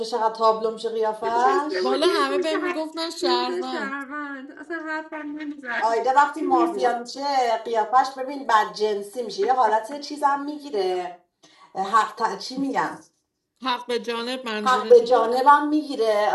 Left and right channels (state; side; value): identical; both; correlation 1.00